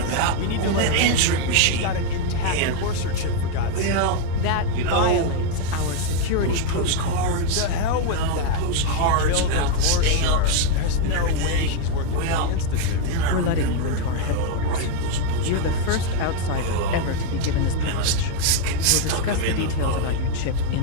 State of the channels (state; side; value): different; both; correlation 0.01